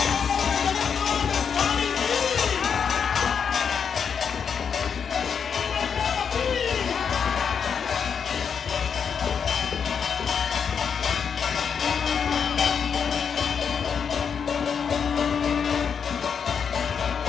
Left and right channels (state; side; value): quieter; right; 6.8 dB